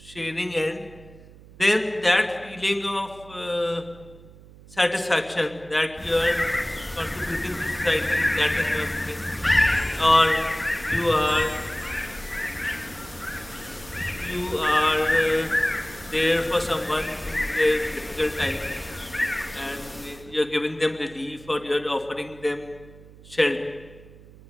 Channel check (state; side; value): noise; right; hum, 21 dB below the sound